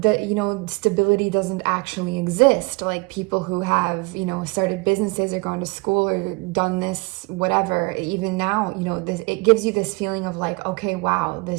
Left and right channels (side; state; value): left; quieter; 26.9 dB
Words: you know, stability doesn't actually exist. Like people who have, you know, started businesses or gone to school or done this, whatever, even now, you know, it gives you this feeling of like, okay, wow,